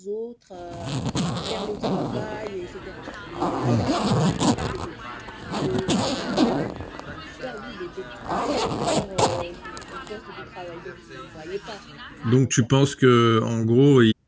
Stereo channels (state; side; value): identical; both; correlation 1.00